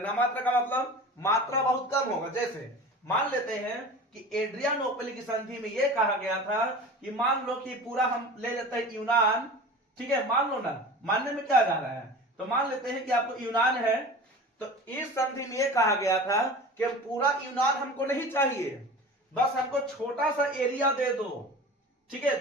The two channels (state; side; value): normal; both; correlation 0.36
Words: का मतलब मात्रा बहुत कम होगा। जैसे मान लेते हैं कि एड्रियानोपल की संधि में यह कहा गया था कि मान लो कि पूरा हम ले लेते हैं यूनान। ठीक है, मान लो ना, मानने में क्या जा रहा है, तो मान लेते हैं कि आपको यूनान है, तो इस संधि में यह कहा गया था कि पूरा यूनान हमको नहीं चाहिए, बस हमको छोटा सा एरिया दे दो। ठीक है,